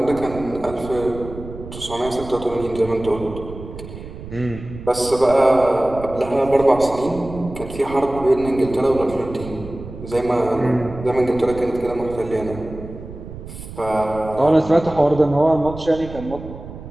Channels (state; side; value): noise; right; rumble, 13 dB below the sound